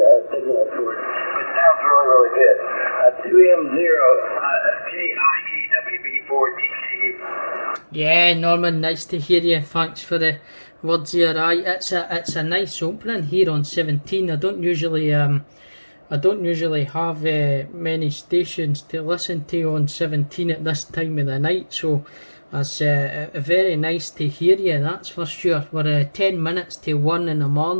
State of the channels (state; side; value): inverted; both; correlation -1.00